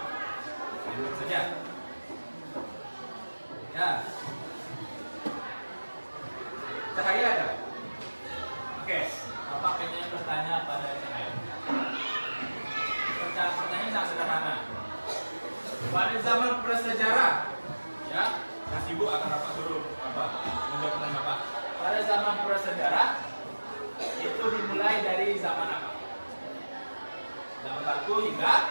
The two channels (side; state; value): both; inverted; correlation -1.00